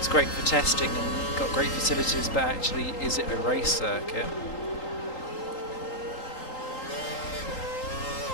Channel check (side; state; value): right; late; 3.8 ms